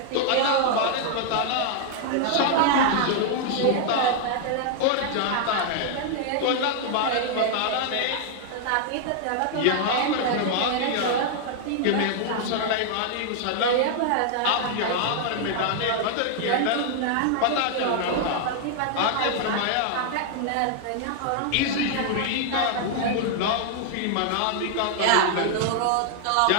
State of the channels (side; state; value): both; different; correlation 0.00